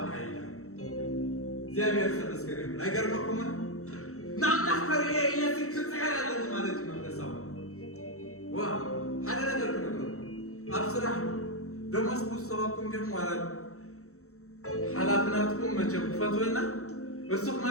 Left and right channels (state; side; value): late; right; 0.64 ms